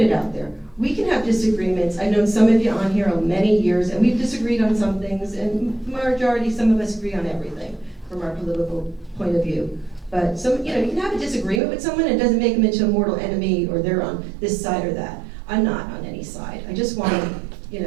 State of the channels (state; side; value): drops out; left; at 11.6 s